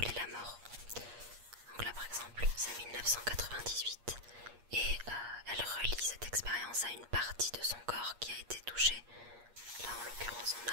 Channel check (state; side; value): late; left; 8.5 ms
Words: la mort. c'est 1998 et elle relie cette expérience à une partie de son corps qui a été touchée. Là en l'occurrence on